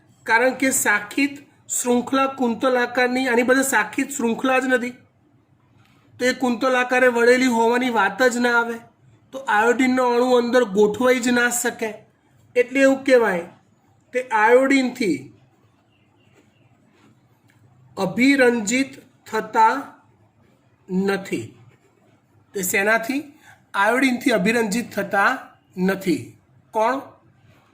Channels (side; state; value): both; identical; correlation 1.00